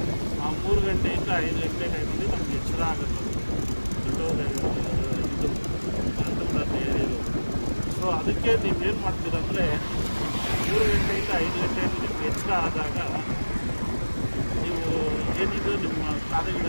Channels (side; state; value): both; inverted; correlation -1.00